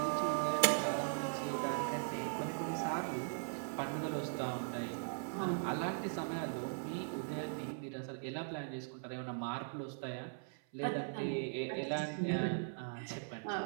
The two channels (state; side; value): silent; left; 51 dB below the other